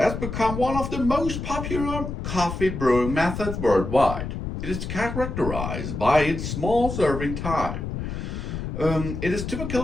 has become one of the most popular coffee brewing methods worldwide. It is characterized by its small serving type. It is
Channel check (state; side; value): noise; left; rumble, 5 dB below the sound